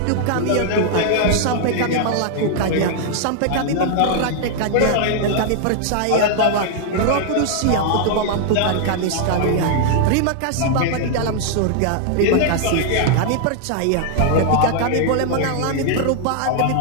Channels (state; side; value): different; both; correlation -0.01